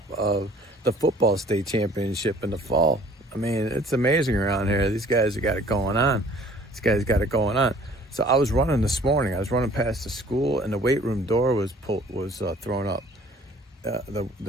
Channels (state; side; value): normal; both; correlation 0.53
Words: of the football state championship in the fall. I mean, it's amazing around here. These guys have got it going on. These guys got it going on. So I was running this morning. I was running past the school, and the weight room door was thrown up.